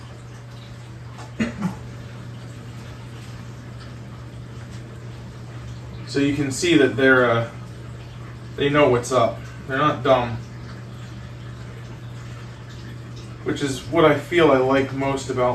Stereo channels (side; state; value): both; identical; correlation 1.00